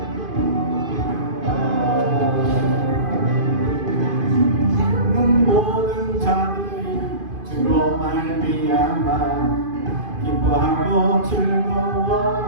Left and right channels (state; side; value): late; left; 2.5 ms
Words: 모든 자들이 주로 말미암아 기뻐하고